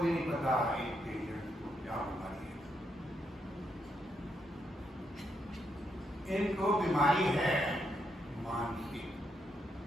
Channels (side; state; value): both; normal; correlation 0.79